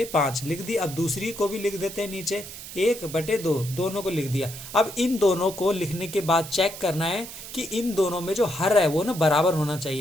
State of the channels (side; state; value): right; noise; hiss, 12 dB below the sound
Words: लिख दी। अब दूसरी को भी लिख देते हैं नीचे 1/2, दोनों को लिख दिया। अब इन दोनों को लिखने के बाद चेक करना है कि इन दोनों में जो हर है वो ना बराबर होना